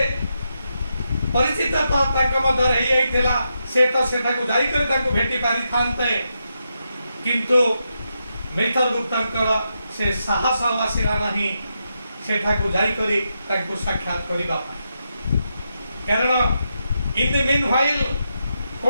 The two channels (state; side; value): inverted; both; correlation -0.85